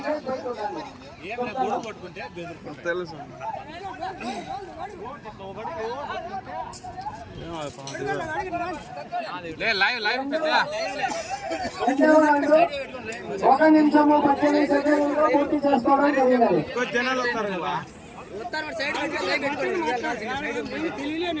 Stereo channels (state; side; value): identical; both; correlation 1.00